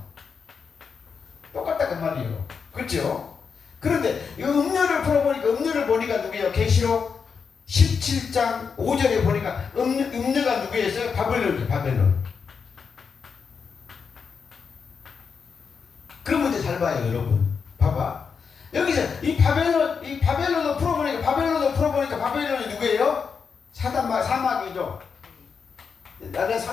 똑같다 그 말이에요. 그렇죠? 그런데 이 음료를 풀어보니까 음료를 보니까 누구예요? 계시록 17장 5절에 보니까 음료가 누구였어요? 바벨론이죠. 바벨론. 그런 문제 잘 봐요, 여러분. 봐봐. 여기서 이 바벨론을 풀어보니까 바벨론이 누구예요? 사마귀죠. 나는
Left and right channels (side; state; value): right; quieter; 5.9 dB